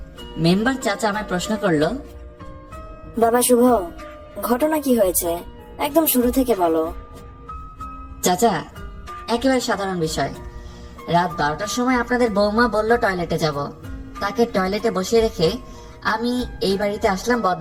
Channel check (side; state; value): both; identical; correlation 1.00